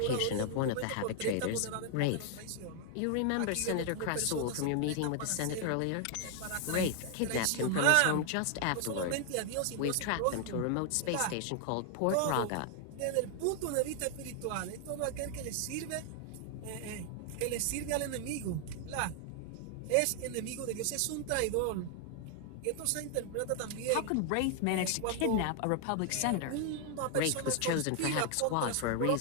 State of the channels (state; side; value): different; both; correlation 0.00